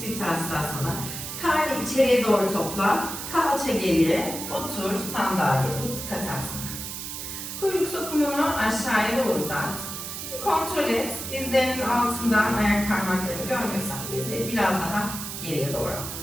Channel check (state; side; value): noise; right; hiss, 7 dB below the sound